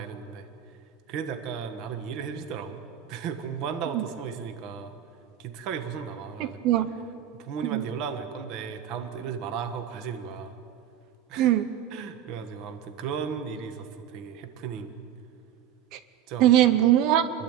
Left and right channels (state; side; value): quieter; left; 10.3 dB